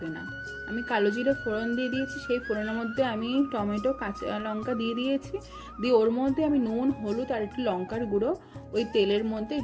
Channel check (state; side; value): identical; both; correlation 1.00